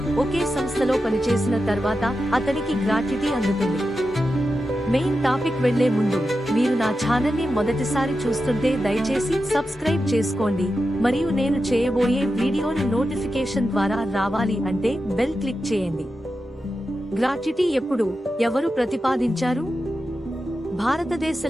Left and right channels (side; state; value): both; normal; correlation 0.90